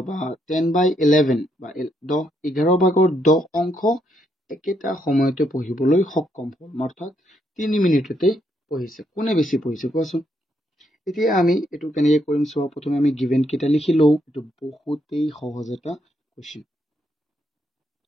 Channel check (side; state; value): both; normal; correlation 0.76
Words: বা 10 by 11 বা 11 ভাগৰ 10 অংশ একেটা সময়তে পঢ়িবলৈ সক্ষম হ'ল অৰ্থাৎ 3 মিনিটতে পঢ়িছে কোনে বেছি পঢ়িছে কোৱাচোন এতিয়া আমি এটো কেনেকৈ কৰিম চোৱা প্ৰথমে আমি গিভেন কেটা লিখি লও এটো বহুতেই সহজ এটা কোৱেশ্চন